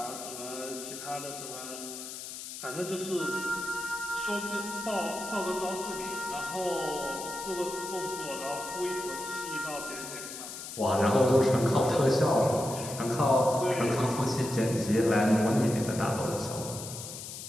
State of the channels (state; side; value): noise; left; hiss, 9 dB below the sound